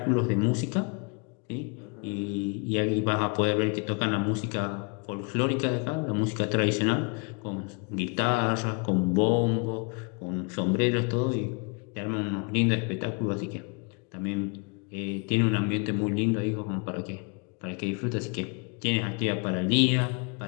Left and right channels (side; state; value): right; quieter; 34.7 dB